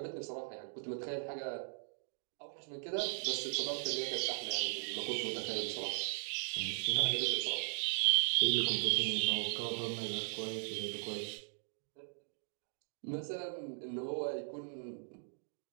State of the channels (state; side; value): silent; left; digital silence